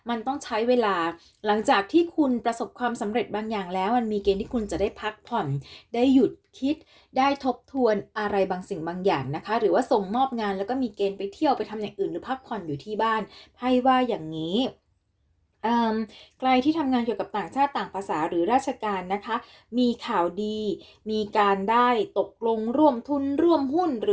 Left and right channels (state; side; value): identical; both; correlation 1.00